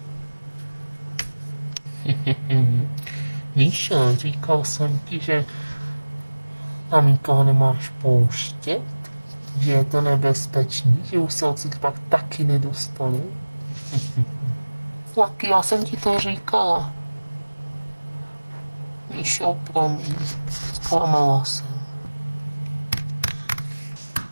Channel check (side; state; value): both; inverted; correlation -1.00